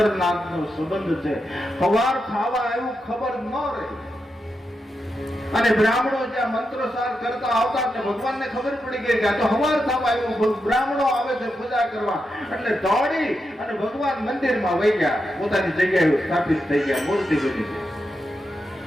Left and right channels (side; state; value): both; normal; correlation 0.86